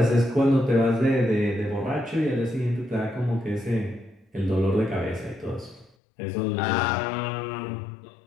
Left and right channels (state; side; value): drops out; right; at 5.9 s